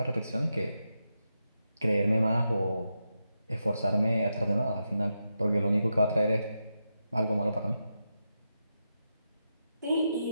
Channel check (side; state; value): both; inverted; correlation -0.86